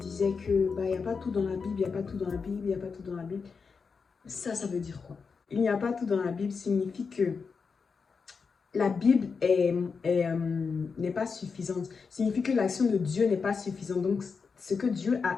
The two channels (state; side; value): quieter; right; 5.3 dB